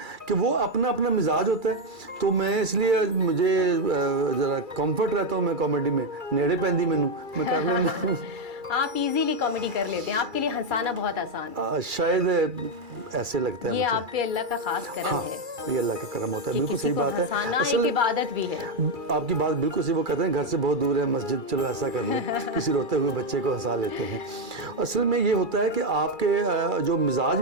कि वो अपना अपना मिजाज होता है। तो मैं इसलिए मुझे ज़रा कंफर्ट रहता हूँ, मैं कॉमेडी में नेड़े पैंदी मैनू मैं कर लेना। आप इजीली कॉमेडी कर लेते हैं, आपके लिए हंसाना बहुत आसान है। शायद ऐसे लगता है ये मुझे। आप पे अल्लाह का खास करम हाँ, है ये अल्लाह का करम होता है, कि बिल्कुल किसी सही को बात है। हंसाना एक असल इबादत भी है। आपकी बात बिल्कुल सही, वो कहते हैं घर से बहुत दूर है मस्जिद, चलो ऐसा कर ले, किसी रोते हुए बच्चे को हंसा लेते हैं। असल में ये होता है कि आपके जो मिजाज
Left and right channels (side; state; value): left; late; 2.3 ms